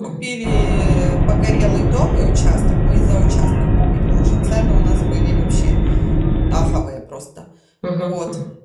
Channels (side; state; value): both; identical; correlation 1.00